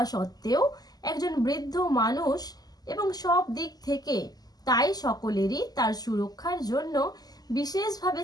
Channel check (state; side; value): late; right; 0.19 ms